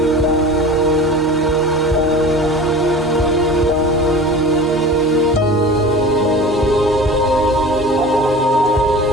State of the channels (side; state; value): both; normal; correlation 0.37